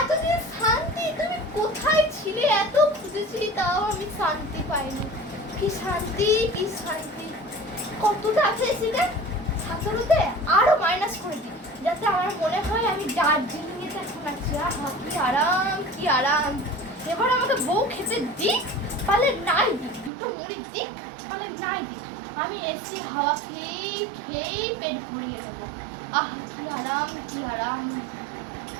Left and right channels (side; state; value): left; drops out; at 20.1 s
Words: এতদিন শান্তি। তুমি কোথায় ছিলে? এত খুঁজেছিলি, তাও আমি শান্তি পাইনি। কি শান্তি, কি শান্তি। কতটা আছে এসিতে? 17তে আরো মাইনাস করে দিই, যাতে আমার মনে হয় আমি দার্জিলিং এতে এখন আছি। আহা কি আরাম, কি আরাম। এবার আমাকে বউ খেতে দিক, পালে নাই দিক, 2টো মুড়ি দিক, পালে নাই দিক, আমি এসি হাওয়া খেয়েই খেয়েই পেট ভরিয়ে দেবো। আহ কি আরাম, কি আরাম।